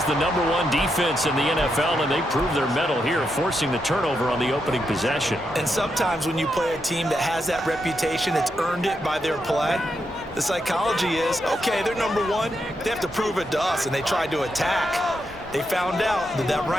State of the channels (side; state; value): both; normal; correlation 0.83